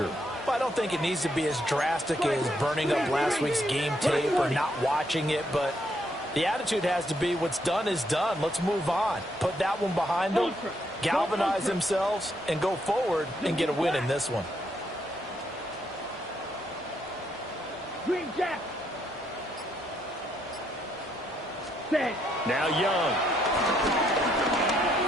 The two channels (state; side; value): normal; both; correlation 0.74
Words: Well, I don't think it needs to be as drastic as burning up last week's game tape or not watching it, but the attitude has to be what's done is done. Let's move on. Put that one behind them, galvanize themselves, and go forward and get a win in this one. Green Jack. Now Young.